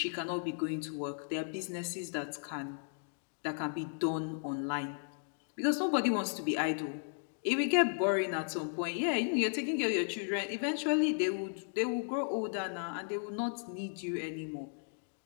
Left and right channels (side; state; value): right; silent; digital silence